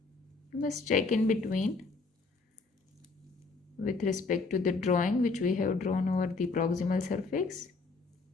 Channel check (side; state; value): right; quieter; 4.0 dB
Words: You must check in between with respect to the drawing which we have drawn over the proximal surface.